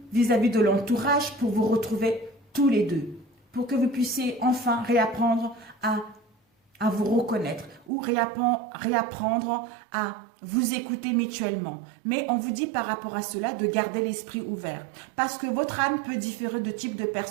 vis-à-vis de l'entourage pour vous retrouver tous les deux. Pour que vous puissiez enfin réapprendre à vous reconnaître ou réapprendre à vous écouter mutuellement. Mais on vous dit par rapport à cela de garder l'esprit ouvert. Parce que votre âme peut différer de type de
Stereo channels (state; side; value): drops out; left; at 7.9 s